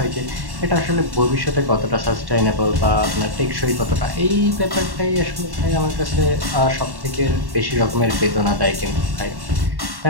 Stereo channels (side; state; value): left; late; 1.1 ms